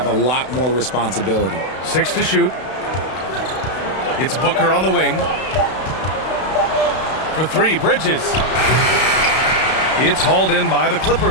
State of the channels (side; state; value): right; late; 32 ms